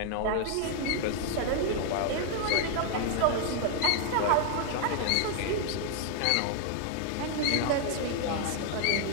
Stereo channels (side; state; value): both; different; correlation 0.00